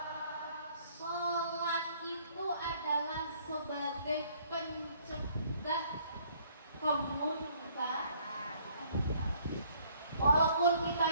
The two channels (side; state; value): both; inverted; correlation -0.62